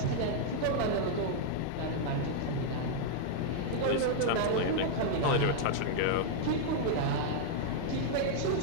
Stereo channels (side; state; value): both; different; correlation -0.01